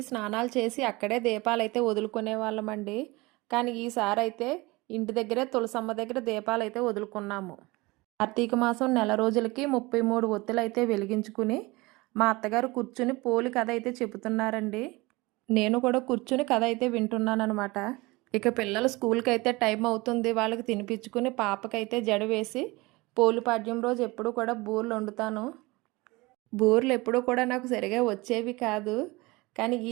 స్నానాలు చేసి అక్కడే దీపాలైతే వదులుకునే వాళ్ళమండి. కానీ ఈసారి అయితే ఇంటి దగ్గరే తులసమ్మ దగ్గర దీపాలైతే వదులుకున్నాము. కార్తీక మాసం నెల రోజులకి 33 ఒత్తులైతే వెలిగించుకుని మా అత్తగారు కూర్చుని పోలి కథ అయితే చెబుతున్నారండి. నేను కూడా కూర్చుని కథ అయితే వింటున్నానమాట. ఇక పిల్లలు స్కూల్కి అయితే టైం అవుతుంది, వాళ్ళకి తినిపించుకుని పాపకైతే జడ వేసి పోలిపాడ్యం రోజు ఎప్పుడు కూడా బూరెలు వండుతాను. బూరెలు ఎప్పుడూ కూడా నాకు సరిగా వచ్చేవి కాదు, కానీ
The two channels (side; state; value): left; quieter; 22.8 dB